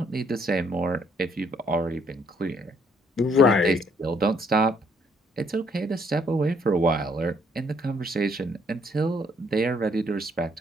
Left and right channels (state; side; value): normal; both; correlation 0.67